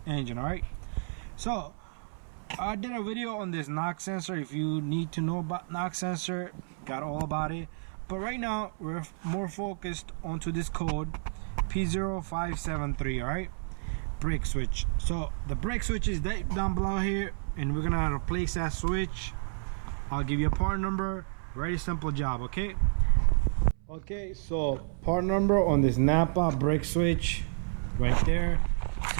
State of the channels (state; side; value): silent; left; 57 dB below the other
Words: engine. Alright, so I did a video on this knock sensor. If you need to know about knock sensor, got all about it. But right now we're more focused onto this code p0573. Alright, brake switch. So the brake switch is down below here, and we're gonna replace that switch. I'll give you a part number. Very simple job. Okay, so part number on this Napa brake switch right there.